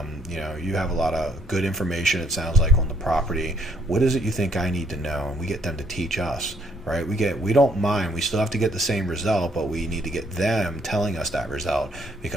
you have a lot of good information, it sounds like, on the property. What is it you think I need to know? And we get them to teach us. Right? We don't mind. We still have to get the same result, but we need to get them telling us that result,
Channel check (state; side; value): normal; both; correlation 0.67